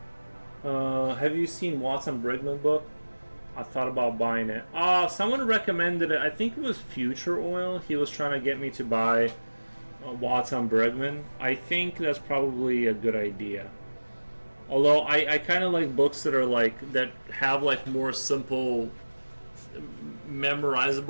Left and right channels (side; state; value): both; inverted; correlation -1.00